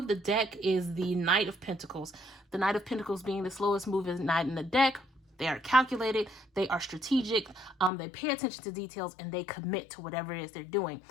the deck is the Knight of Pentacles. The Knight of Pentacles being the slowest moving knight in the deck. They are calculated, they are strategic, they pay attention to details, and they commit to whatever it is they're doing.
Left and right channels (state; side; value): drops out; right; at 7.9 s